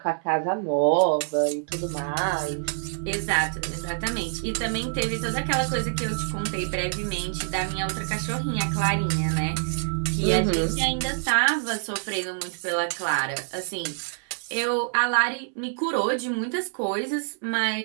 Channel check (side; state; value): left; silent; 61 dB below the other